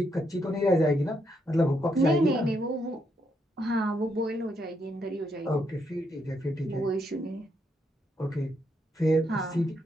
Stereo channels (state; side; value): normal; both; correlation 0.77